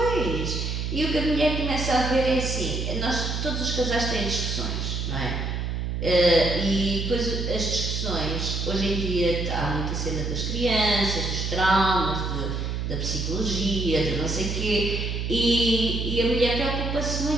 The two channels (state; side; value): noise; right; hum, 2 dB below the sound